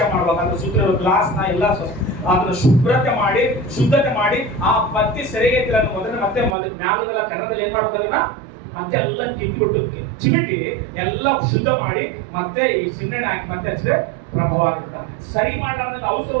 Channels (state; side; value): drops out; left; at 6.6 s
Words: ಮಾಡ್ಬೇಕು. ಅದ್ರ ಸುತ್ತ ಗ್ಲಾಸ್ ನ ಎಲ್ಲ ಅದನ್ನ ಶುದ್ಧತೆ ಮಾಡಿ ಆ ಬತ್ತಿ ಸೆರೆಗೆ ಮತ್ತೆ ಮ್ಯಾಲದೆಲ್ಲ ಕನ್ನಡದಲ್ಲಿ ಏನ್ ಮಾಡ್ಬೇಕು, ಅದನ್ನ ಮತ್ತೆ ಎಲ್ಲ ಕಿತ್ಬಿಟ್ಟು ಚಿಮಿಟಿ ಎಲ್ಲ ಶುದ್ಧ ಮಾಡಿ ಮತ್ತೆ ಈ ಸಿಂಗಣ್ಣೆ ಹಾಕಿ ಮತ್ತೆ ಹಚ್ಚಿದ್ರೆ ಪ್ರಭಾವ ಆಗುತ್ತೆ. ಸರಿ ಮಾಡ್ಲಾರ್ದ